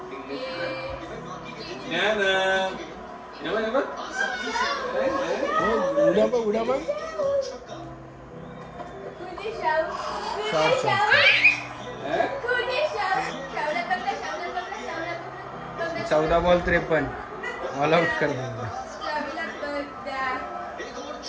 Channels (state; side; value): identical; both; correlation 1.00